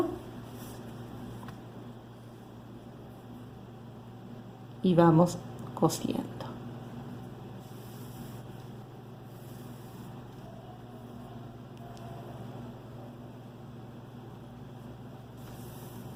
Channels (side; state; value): both; identical; correlation 1.00